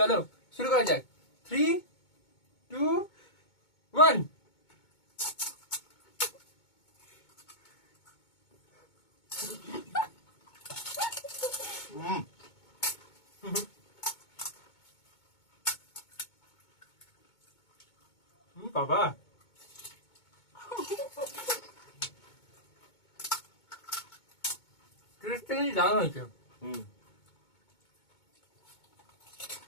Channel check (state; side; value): late; right; 2.2 ms